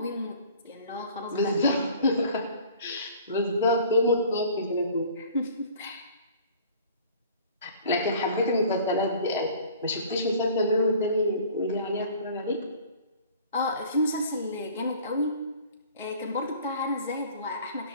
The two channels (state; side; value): inverted; both; correlation -0.48